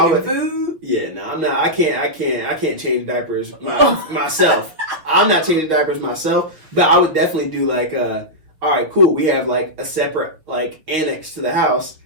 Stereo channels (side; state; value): left; late; 6.0 ms